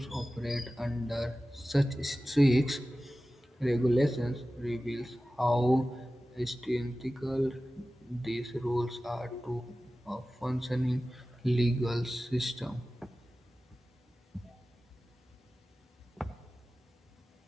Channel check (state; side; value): normal; both; correlation 0.96